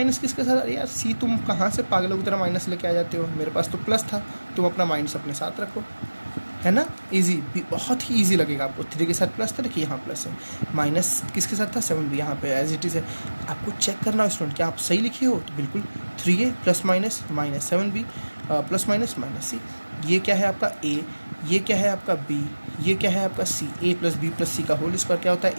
किसके साथ, अरे यार सी तुम कहाँ से पागलों की तरह माइनस लेके आ जाते हो, मेरे पास तो प्लस था, तुम अपना माइनस अपने साथ रखो, है ना इजी, बहुत ही इजी लगेगा आपको। 3 के साथ प्लस था, देखिए यहाँ प्लस है, माइनस किसके साथ था 7 भी यहाँ पे एज इट इज़ है। आपको चेक करना है स्टूडेंट क्या आप सही लिखे हो, तो बिल्कुल 3a plus minus minus 7b plus minus minus c. ये क्या है आपका a, ये क्या है आपका b, ये क्या है आपका c। a plus b plus c का होल स्क्वायर क्या होता है,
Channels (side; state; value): both; inverted; correlation -1.00